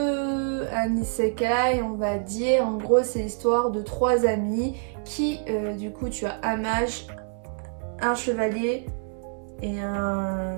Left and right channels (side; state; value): left; silent; 61 dB below the other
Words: un isekai, on va dire. En gros, c'est l'histoire de 3 amis qui, du coup, tu as un mage, un chevalier et